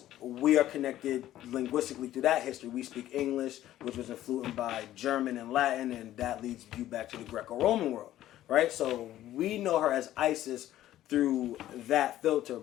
we are connected linguistically through that history. We speak English, which was influenced by German and Latin, and that leads you back to the Greco-Roman world, right? So we know her as Isis through that filter,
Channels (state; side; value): quieter; right; 13.4 dB